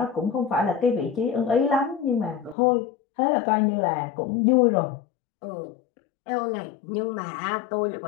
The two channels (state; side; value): drops out; right; at 2.6 s